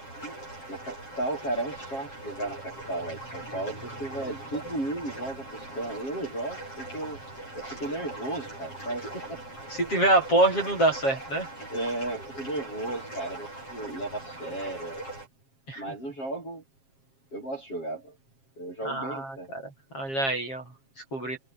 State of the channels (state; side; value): late; right; 7.4 ms